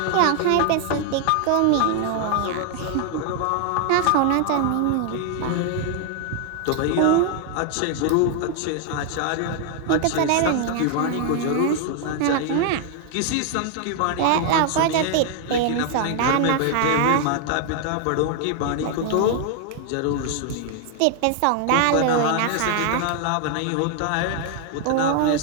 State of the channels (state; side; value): different; both; correlation 0.00